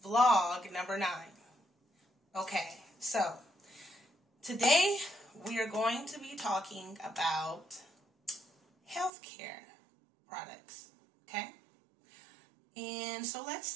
Vlog number 9. Okay, so today we are going to be talking about healthcare products. Okay, and so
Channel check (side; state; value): left; drops out; at 9.1 s